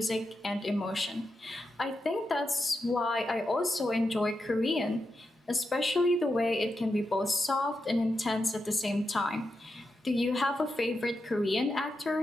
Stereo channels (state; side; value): normal; both; correlation 0.87